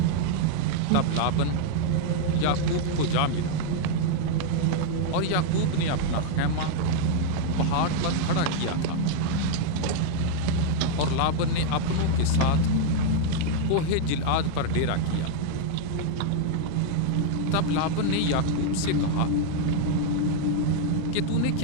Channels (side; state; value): both; different; correlation 0.00